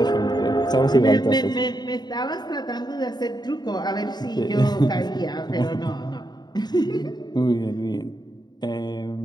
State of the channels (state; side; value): late; right; 0.20 ms